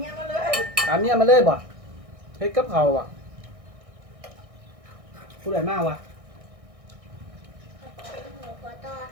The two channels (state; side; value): late; left; 1.6 ms